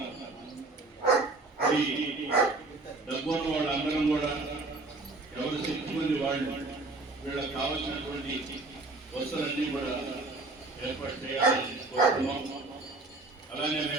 ఈ డబ్బున్న వాళ్ళందరం కూడా ఎవరు శక్తి మంది వాళ్ళు వీళ్ళకి కావాల్సినటువంటి వస్తువులన్నీ కూడా ఏర్పాటు చేయాలని కోరుతున్నాం. అలానే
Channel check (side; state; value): left; quieter; 3.3 dB